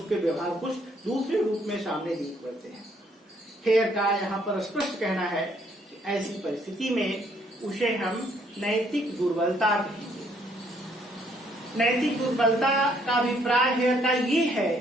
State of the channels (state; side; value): normal; both; correlation 0.67